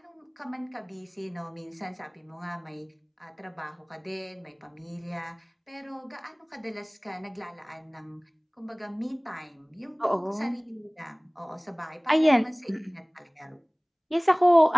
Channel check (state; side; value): identical; both; correlation 1.00